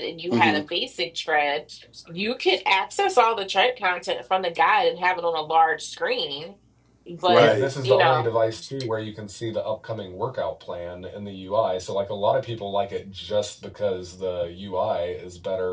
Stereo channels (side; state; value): both; identical; correlation 1.00